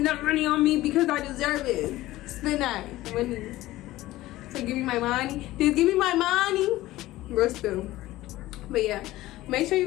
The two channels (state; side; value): quieter; right; 16.8 dB